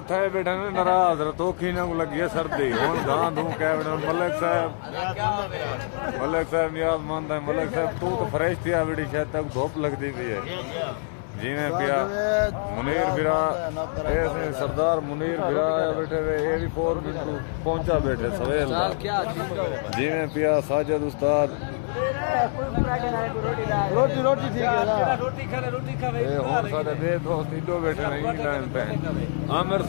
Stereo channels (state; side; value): silent; right; digital silence